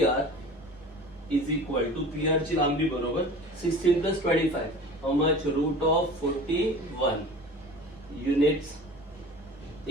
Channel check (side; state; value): both; normal; correlation 0.39